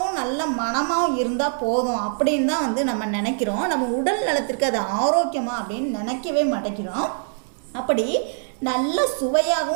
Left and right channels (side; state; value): left; silent; digital silence